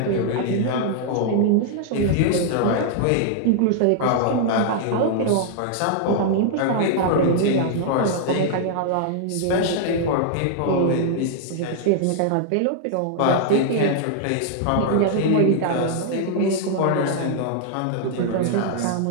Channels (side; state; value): both; different; correlation -0.01